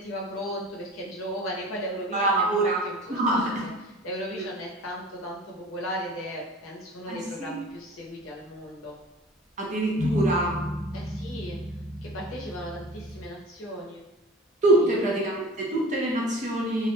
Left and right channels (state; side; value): normal; both; correlation 0.41